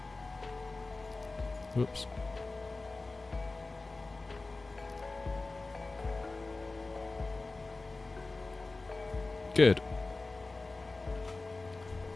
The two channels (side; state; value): right; quieter; 3.4 dB